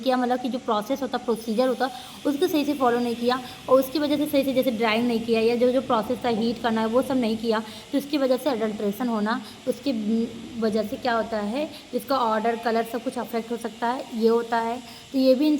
मतलब कि जो प्रोसेस होता है, प्रोसीजर होता है, उसको सही से फॉलो नहीं किया, और उसकी वजह से सही से जैसे ड्राइंग नहीं किया, या जो जो प्रोसेस था हीट करना है वो सब नहीं किया, तो उसकी वजह से अडल्ट्रेशन होना, उसकी वजह से क्या होता है, इसका ऑर्डर कलर सब कुछ अफेक्ट हो सकता है, ये होता है। तो ये भी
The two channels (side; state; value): both; identical; correlation 1.00